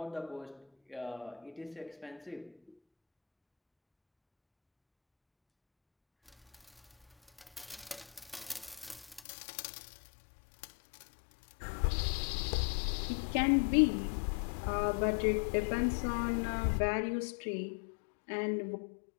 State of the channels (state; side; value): drops out; right; at 9.2 s